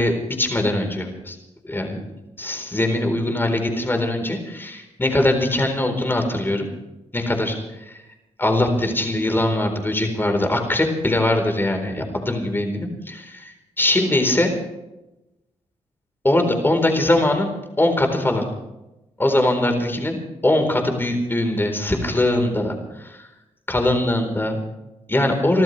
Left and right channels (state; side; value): normal; both; correlation 0.75